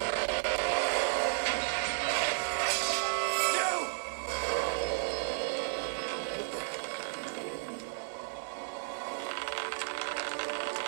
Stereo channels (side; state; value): left; silent; digital silence